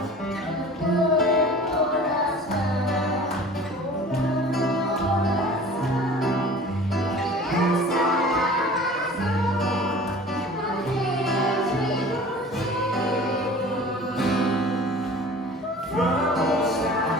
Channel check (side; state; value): both; normal; correlation 0.43